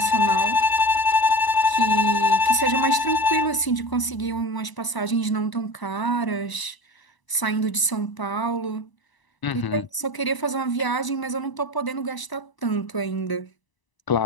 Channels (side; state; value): right; late; 1.0 ms